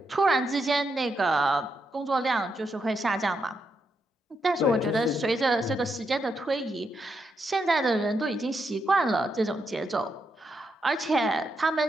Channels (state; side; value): normal; both; correlation 0.82